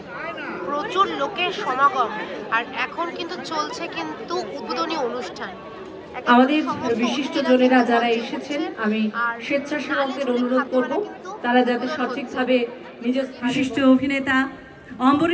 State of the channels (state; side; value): identical; both; correlation 1.00